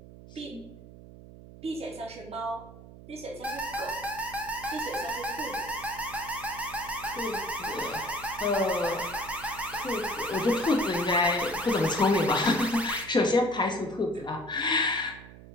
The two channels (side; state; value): right; noise; hum, 17 dB below the sound